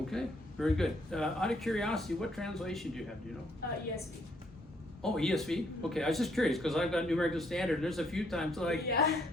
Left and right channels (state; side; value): normal; both; correlation 0.69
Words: Okay, very good. Out of curiosity, what translation do you have? Do you know? ESV. Oh, ESV? Okay, I was just curious because I've got New American Standard. There's a few times like Yeah.